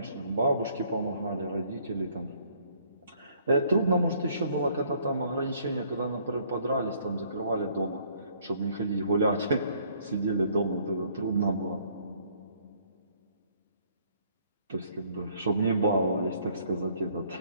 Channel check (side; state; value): both; inverted; correlation -0.62